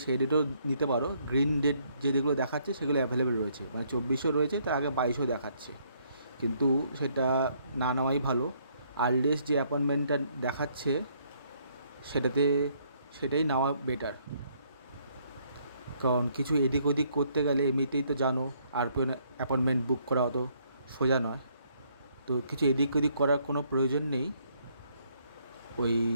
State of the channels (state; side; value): inverted; both; correlation -0.69